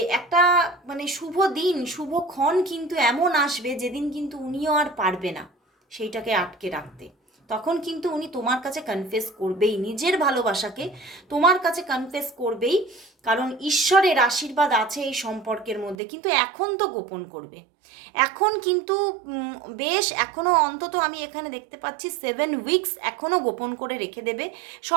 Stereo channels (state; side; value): drops out; left; at 16.0 s